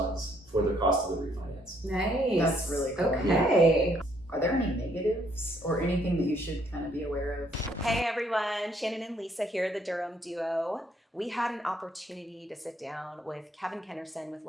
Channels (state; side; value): normal; both; correlation 0.68